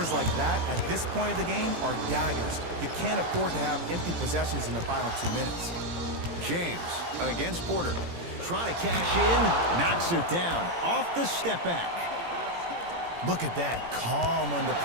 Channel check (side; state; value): left; late; 17 ms